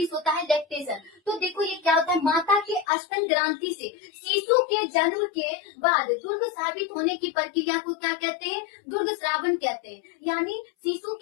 होता है लैक्टेशन। तो देखो ये क्या होता है, माता के स्तन ग्रंथि से शिशु के जन्म के बाद दुर्ग साबित होने की प्रक्रिया को क्या कहते हैं, दुर्ग श्रावण कहते हैं। यानी शिशु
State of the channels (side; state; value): right; drops out; at 2.9 s